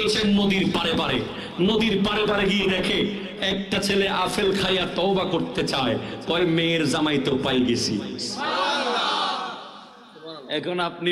নদীর পারে পারে। নদীর পারে পারে গিয়ে দেখে একটা ছেলে আপেল খাইয়া তওবা করতে চায়, কয় মেয়ের জামাই তো পাই গেছি। এখন আপনি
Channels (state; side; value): identical; both; correlation 1.00